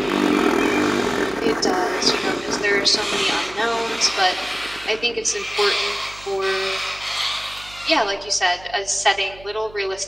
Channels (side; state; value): right; noise; hum, 21 dB below the sound